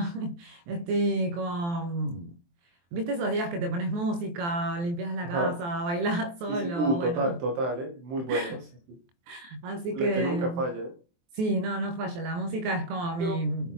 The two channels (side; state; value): left; late; 23 ms